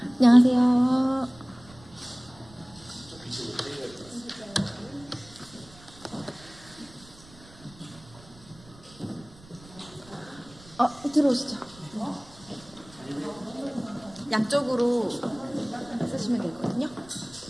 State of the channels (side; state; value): right; noise; rumble, 22 dB below the sound